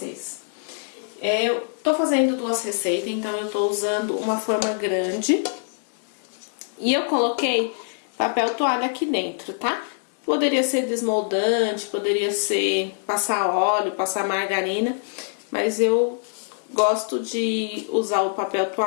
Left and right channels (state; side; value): silent; right; digital silence